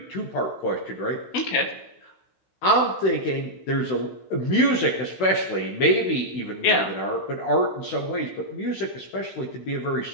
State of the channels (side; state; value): right; late; 16 ms